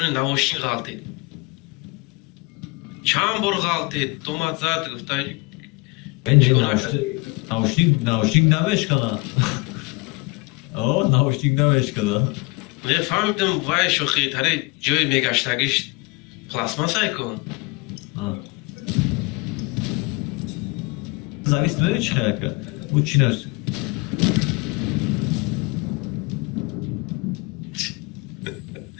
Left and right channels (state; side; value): quieter; right; 26.2 dB